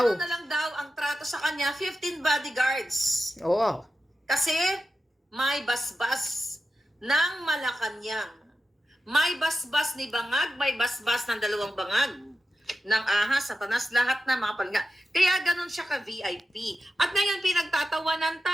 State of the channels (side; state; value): both; normal; correlation 0.91